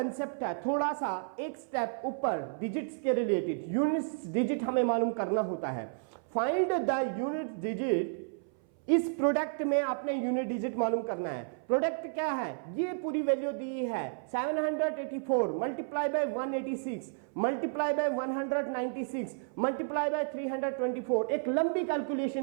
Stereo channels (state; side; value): silent; left; 57 dB below the other